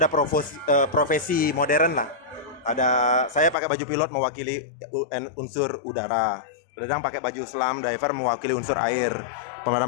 profesi modern lah. Saya pakai baju pilot mewakili unsur udara. Dadang pakai baju slam diver mewakili unsur air.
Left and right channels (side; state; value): right; drops out; at 3.6 s